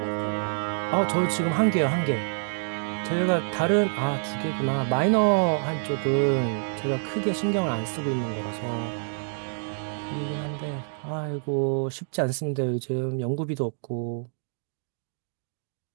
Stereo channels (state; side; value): silent; left; digital silence